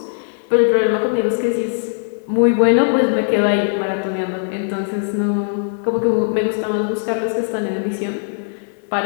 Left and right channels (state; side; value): silent; right; digital silence